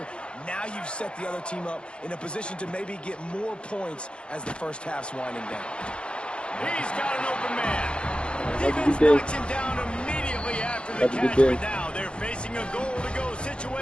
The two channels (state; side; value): late; right; 0.056 ms